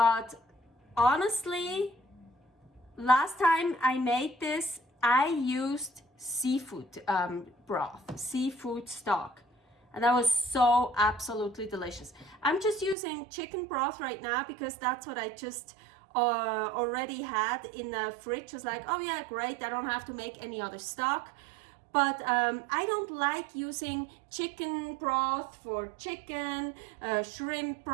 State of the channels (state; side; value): drops out; left; at 13.0 s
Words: honestly, last time I made this, I used seafood broth, seafood stock, and that was so absolutely delicious. I'm just using chicken broth right now because that's what I just already had in the fridge. I was like, oh yeah, great, I don't have to make any other stock. But I don't like using chicken broth for chicken, shrimp